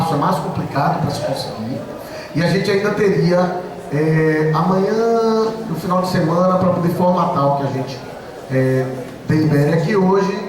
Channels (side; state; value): both; identical; correlation 1.00